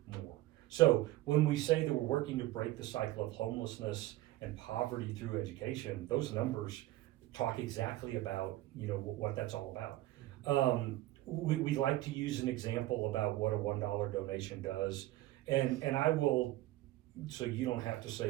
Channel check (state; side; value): quieter; left; 16.7 dB